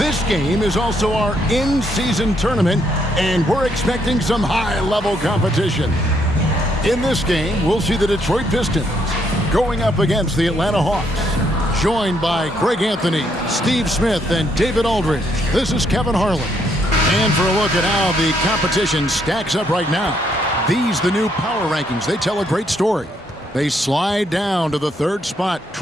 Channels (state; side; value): normal; both; correlation 0.73